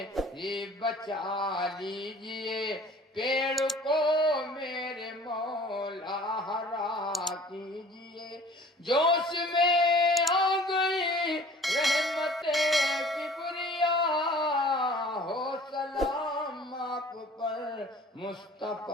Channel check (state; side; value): normal; both; correlation 0.48